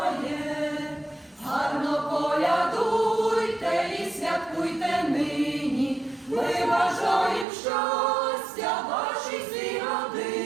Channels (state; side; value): drops out; left; at 7.5 s